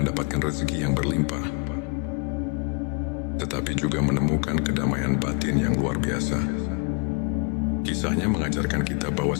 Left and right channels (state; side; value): quieter; right; 34.6 dB